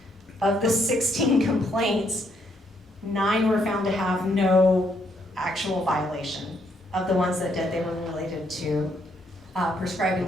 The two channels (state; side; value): normal; both; correlation 0.73